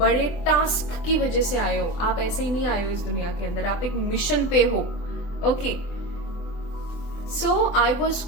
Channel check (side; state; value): right; late; 24 ms